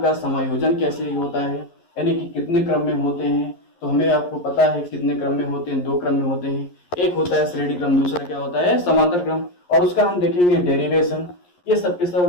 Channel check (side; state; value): right; late; 11 ms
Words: समायोजन कैसे होता है, यानी कि कितने क्रम में होते हैं। तो हमें आपको पता है कितने क्रम में होते हैं, 2 क्रम में होते हैं, एक होता है श्रेणी क्रम, दूसरा क्या होता है समांतर क्रम, और उसका हम देखेंगे डेरिवेशन। ये सब के सब